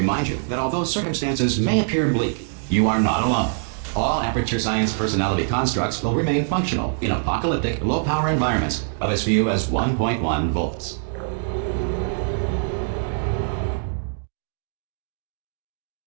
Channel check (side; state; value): left; silent; digital silence